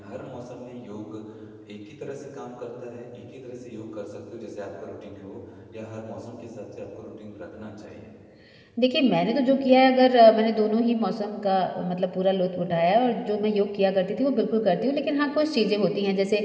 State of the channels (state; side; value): identical; both; correlation 1.00